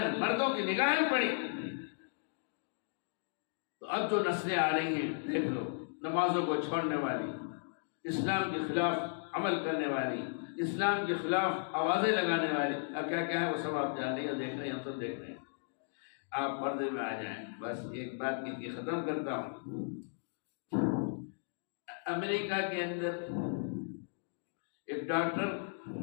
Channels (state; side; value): silent; right; digital silence